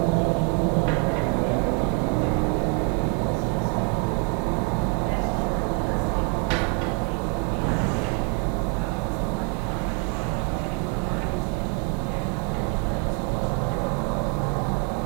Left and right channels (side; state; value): left; quieter; 31.0 dB